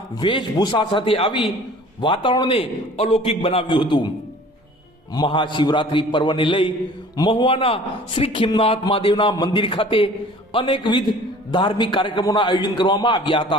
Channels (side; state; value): both; normal; correlation 0.48